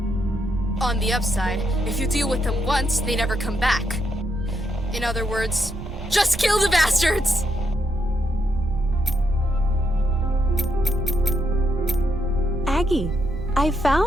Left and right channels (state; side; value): noise; right; rumble, 11 dB below the sound